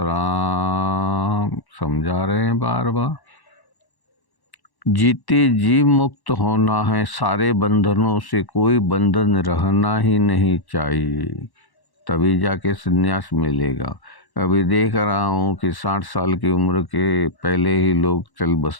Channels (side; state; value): right; late; 1.1 ms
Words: समझा रहे हैं बार बार। जीते जी मुक्त होना है, सारे बंधनों से कोई बंधन रहना ही नहीं चाहिए, तभी जाके संन्यास मिलेगा। अभी देख रहा हूँ कि 60 साल की उम्र के पहले ही लोग चल